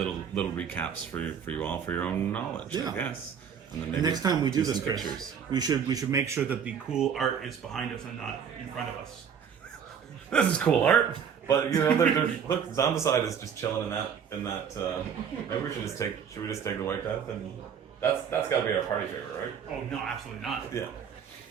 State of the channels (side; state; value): left; quieter; 7.5 dB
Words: recaps for you all for your own knowledge. Yeah. I guess. And then maybe next time we do this, some Chris, we should make sure that the cool art is behind us and not in front of us. This is cool art, but you know, look, Zombicide is just chilling in that. Maybe we should just take the White Death, and that's got to be our party favorite, right? Oh no, absolutely not. Yeah.